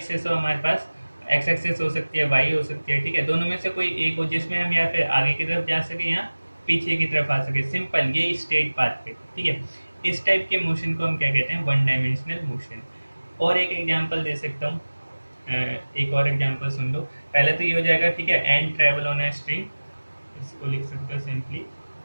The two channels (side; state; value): both; inverted; correlation -1.00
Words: हो हमारे पास, एक्स एक्सेस हो सकती है, वाई हो सकती है, ठीक है, दोनों में से कोई एक हो जिसमें हम या फिर आगे की तरफ जा सके या पीछे की तरफ आ सके, सिंपल, ये स्ट्रेट पाथ पे, ठीक है। इस टाइप के मोशन को हम क्या कहते हैं, 1 डायमेंशनल मोशन। और एक एग्जांपल दे सकता हूँ, एक और एग्जांपल सुन लो। पहले तो ये हो जाएगा, ठीक है, and travel on a string, इसको लिख सकते हो simply,